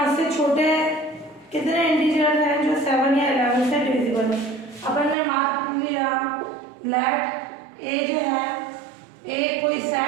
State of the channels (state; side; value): drops out; left; at 5.2 s